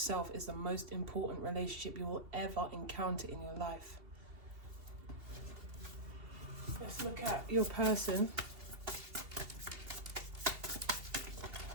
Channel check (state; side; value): late; left; 2.7 ms